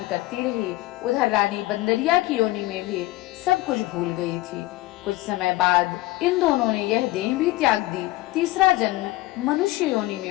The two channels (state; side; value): quieter; right; 18.5 dB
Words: करती रही। उधर रानी बंदरिया की योनि में भी सब कुछ भूल गई थी। कुछ समय बाद इन दोनों ने यह देह भी त्याग दी। तीसरा जन्म मनुष्य योनि